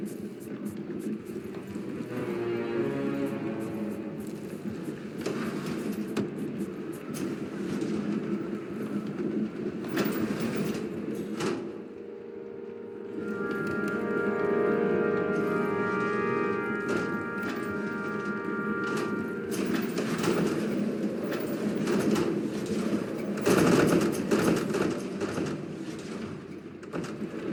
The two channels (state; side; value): identical; both; correlation 1.00